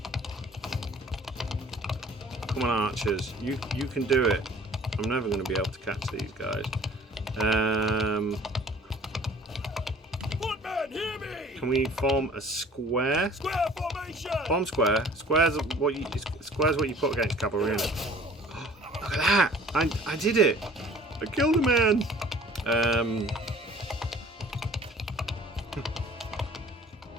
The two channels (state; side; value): normal; both; correlation 0.50